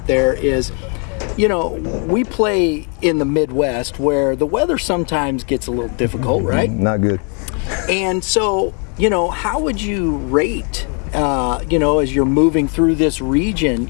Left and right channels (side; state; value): right; quieter; 39.0 dB